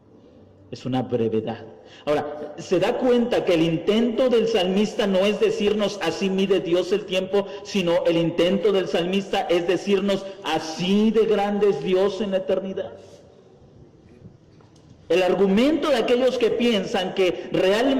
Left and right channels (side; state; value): both; identical; correlation 1.00